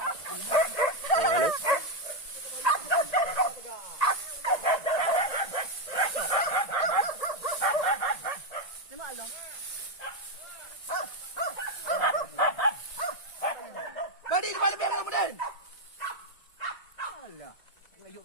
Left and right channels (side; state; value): right; late; 1.9 ms